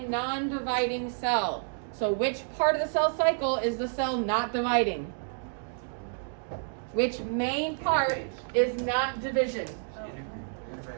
non-dividing cell? So which part of the cell cycle is the cell not dividing? Which main part is not division?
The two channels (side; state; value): left; silent; digital silence